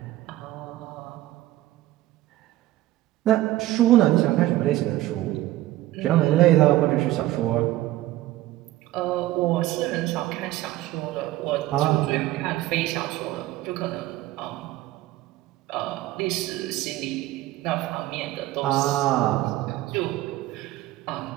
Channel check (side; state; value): left; quieter; 16.0 dB